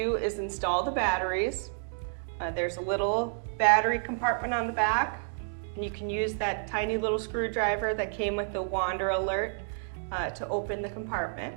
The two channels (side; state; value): left; silent; digital silence